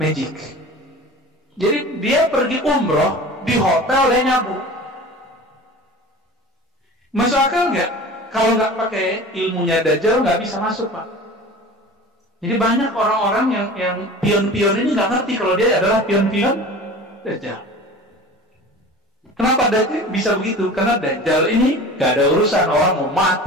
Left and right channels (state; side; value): normal; both; correlation 0.38